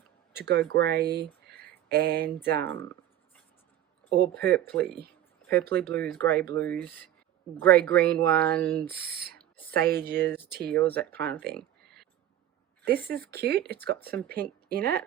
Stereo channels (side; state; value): left; quieter; 11.9 dB